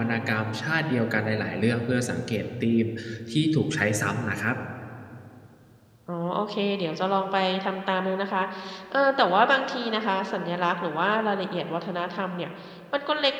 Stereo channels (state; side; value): identical; both; correlation 1.00